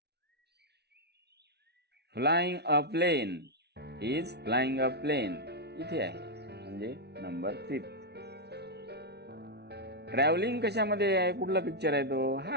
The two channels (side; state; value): left; late; 0.49 ms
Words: Flying a plane. Is flying a plane. इथे आहे, म्हणजे नंबर 5. ट्रॅव्हलिंग कशामध्ये आहे? कुठला पिक्चर आहे तो?